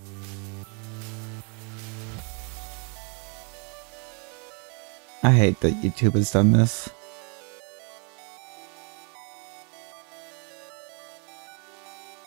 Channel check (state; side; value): quieter; left; 37.0 dB